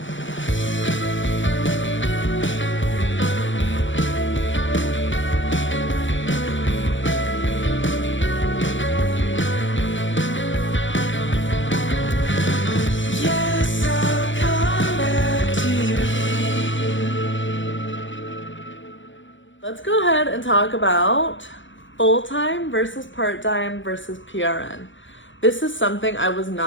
Let's go ahead and talk about full-time versus part-time versus PRN. This is something I was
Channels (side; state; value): right; late; 0.56 ms